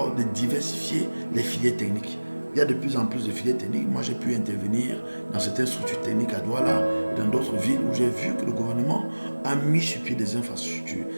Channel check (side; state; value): both; inverted; correlation -1.00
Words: de diversifier les filières techniques. Il y a de plus en plus de filières techniques. Moi, j'ai pu intervenir dans certaines structures techniques à Douala et dans d'autres villes où j'ai vu que le gouvernement a mis sur pied des infrastructures.